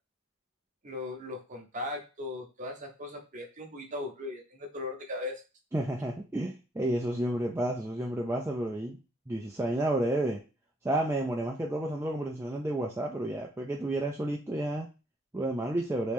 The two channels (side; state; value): both; normal; correlation 0.67